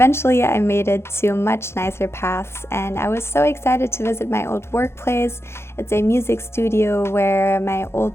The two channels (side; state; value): right; late; 0.12 ms